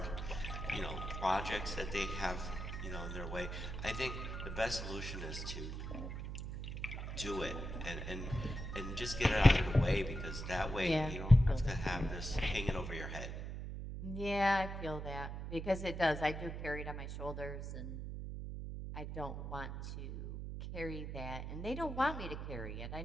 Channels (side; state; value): right; noise; hum, 6 dB below the sound